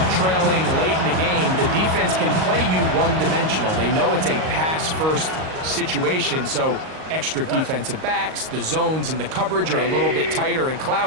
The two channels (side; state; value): left; late; 38 ms